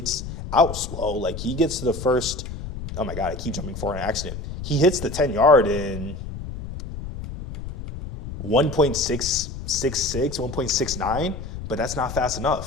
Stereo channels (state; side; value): noise; left; rumble, 9 dB below the sound